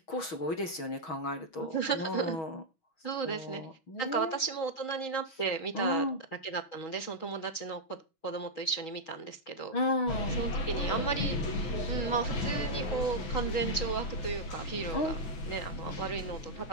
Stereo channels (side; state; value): right; late; 6.2 ms